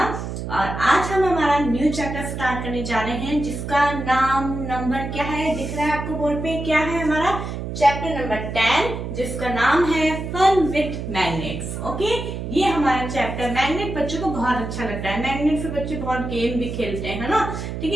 और आज हम हमारा न्यू चैप्टर स्टार्ट करने जा रहे हैं, जिसका नाम नंबर क्या है, दिख रहा है आपको बोर्ड पे, क्या है हमारा चैप्टर नंबर 10, जिसका नाम है फन विथ मैग्नेट्स। ओके, ये हमारा चैप्टर, मैग्नेट बच्चों को बहुत अच्छा लगता है, मैग्नेट से बच्चे बहुत गेम भी खेलते हैं, है ना। ठीक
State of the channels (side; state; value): right; noise; hum, 6 dB below the sound